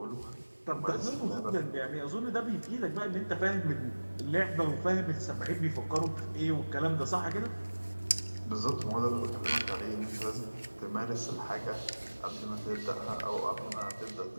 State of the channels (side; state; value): both; inverted; correlation -1.00